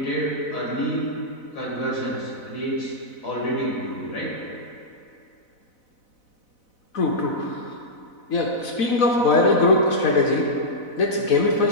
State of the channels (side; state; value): right; late; 4.0 ms